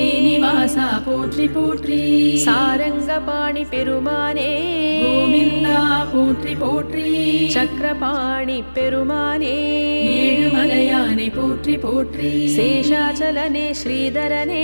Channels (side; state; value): both; inverted; correlation -1.00